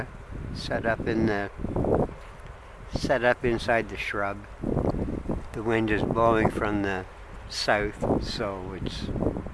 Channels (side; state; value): both; identical; correlation 1.00